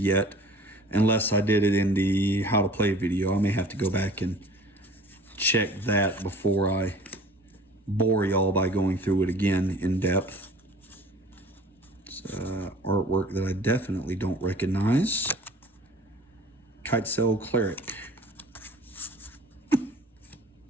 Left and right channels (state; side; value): normal; both; correlation 0.47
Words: unless I did it in the how to play video. I may have to go back and check that before I bore y'all by going through it again in depth. It's artwork that I definitely don't recognize. Kitesail Cleric.